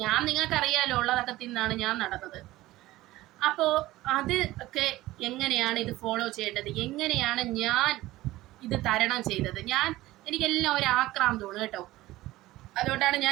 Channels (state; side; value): quieter; left; 17.2 dB